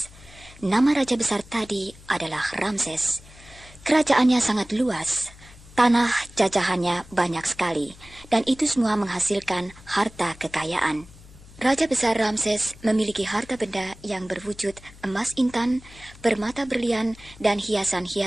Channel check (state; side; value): noise; left; hum, 21 dB below the sound